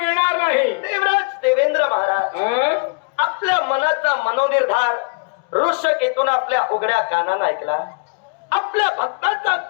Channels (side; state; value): right; quieter; 35.9 dB